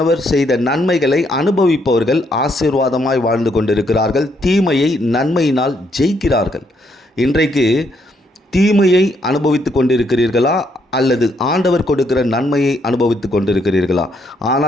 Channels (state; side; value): normal; both; correlation 0.73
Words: செய்த நன்மைகளை அனுபவிப்பவர்கள் ஆசீர்வாதமாய் வாழ்ந்து கொண்டிருக்கிறார்கள். தீமையை நன்மையினால் ஜெயிக்கிறார்கள். இன்றைக்கு தீமையை அனுபவித்து கொண்டிருக்கிறீர்களா அல்லது ஆண்டவர் கொடுக்கிற நன்மையை அனுபவித்து கொண்டிருக்கிறீர்களா?